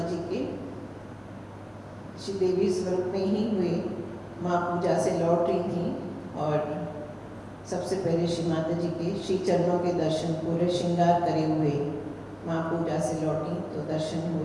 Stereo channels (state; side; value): identical; both; correlation 1.00